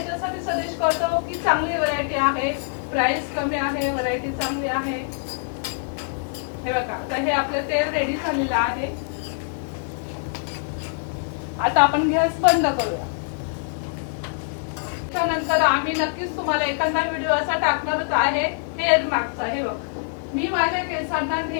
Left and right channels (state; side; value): silent; right; 61 dB below the other